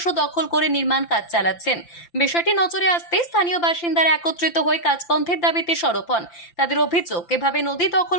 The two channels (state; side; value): late; right; 5.8 ms